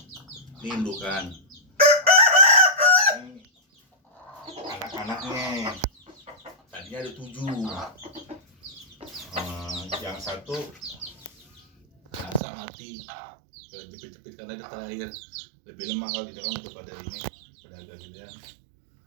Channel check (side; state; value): left; drops out; at 12.4 s